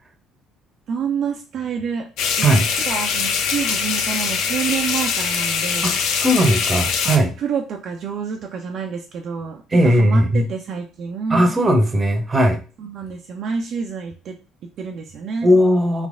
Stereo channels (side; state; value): both; normal; correlation 0.73